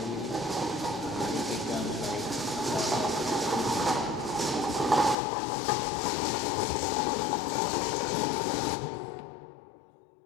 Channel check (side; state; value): right; drops out; at 5.2 s